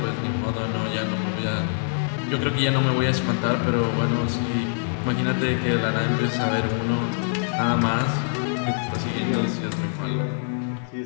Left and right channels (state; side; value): silent; right; digital silence